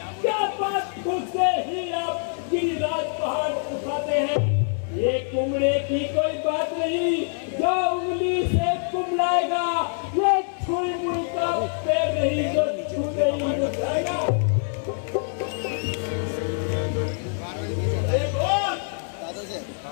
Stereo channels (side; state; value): right; silent; 62 dB below the other